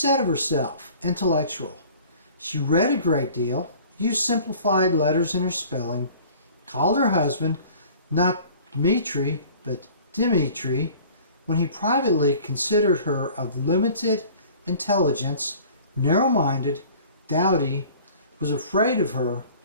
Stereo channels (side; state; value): both; inverted; correlation -0.47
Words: of herself, intellectual. She read a great deal, used simplified letters in her spelling, called her husband not Dmitri but Dimitri, when he privately considered her of limited intelligence, narrow-minded, dowdy, was afraid of her,